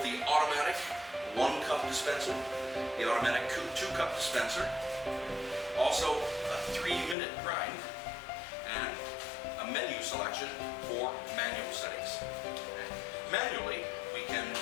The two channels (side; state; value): right; drops out; at 7.2 s